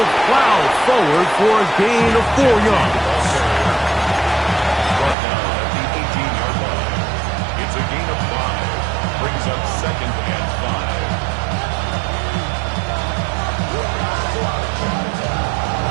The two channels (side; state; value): left; drops out; at 5.2 s